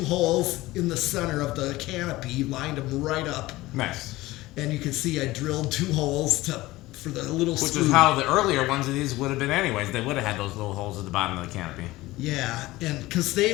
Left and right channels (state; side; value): quieter; right; 18.6 dB